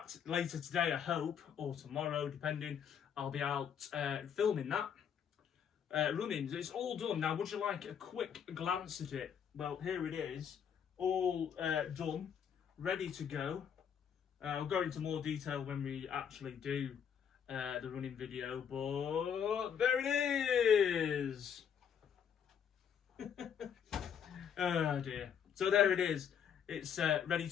later today, I hope, or tomorrow, depending, I'll be out filming that, running. It's all done. Now, would you like a quick glance at it? Well, here it is, all done, ready to go. I'll go into more detail when we actually do the running video, but there it is. Oh dear. So there it is. It's ready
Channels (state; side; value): quieter; right; 8.0 dB